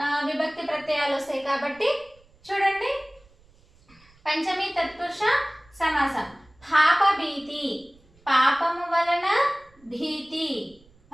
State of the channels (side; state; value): right; noise; rumble, 30 dB below the sound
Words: విభక్తి ప్రత్యయాలు వస్తాయి. కాబట్టి చూడండి, పంచమి తత్పురుష సమాసం. పాప భీతి పాపము వలన భీతి.